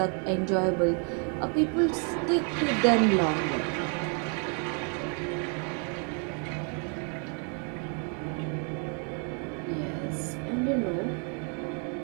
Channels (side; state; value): left; quieter; 40.0 dB